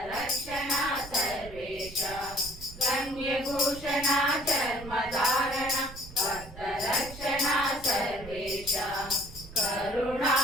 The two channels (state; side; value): noise; right; rumble, 15 dB below the sound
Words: सर्वेशा गंगभूषणा चर्मधारणा भक्तरक्षणा सर्वेशा